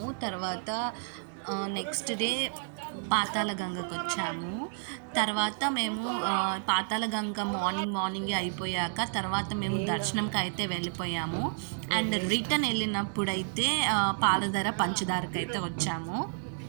తర్వాత నెక్స్ట్ డే పాతాళ గంగకు వచ్చాము. తర్వాత మేము పాతాళ గంగ మార్నింగే అయిపోయాక తర్వాత మేము దర్శనంకి అయితే వెళ్ళిపోయాము. అండ్ రిటర్న్ వెళ్ళినప్పుడైతే పాలధార పంచదారకి అయితే వచ్చాము.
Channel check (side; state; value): left; silent; digital silence